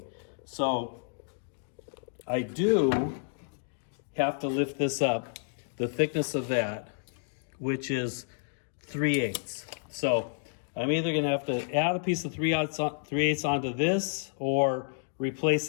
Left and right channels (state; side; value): silent; right; digital silence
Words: So I do have to lift this up, the thickness of that, which is 3/8. So I'm either gonna have to add a piece of 3/8 onto this, or replace